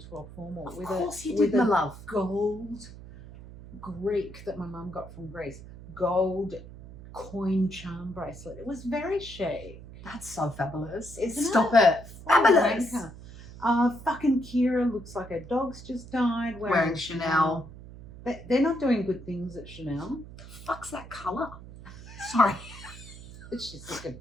12 formal Of course you with did, my a love. gold Greek that my mum got from Greece. Gold coin charm bracelet. It was very chic. That's so fabulous. Isn't Stop it? it. Fabulous. Fucking Kira looks like her dog's just died. Wearing Chanel. They're not doing good things at Chanel. The fuck's that colour? Sorry. It's just looking.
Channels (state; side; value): noise; right; hum, 16 dB below the sound